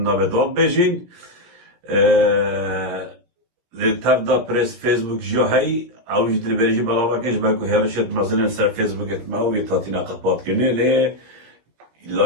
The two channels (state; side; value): late; left; 17 ms